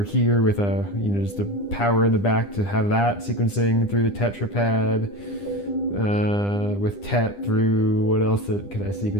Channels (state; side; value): late; right; 9.9 ms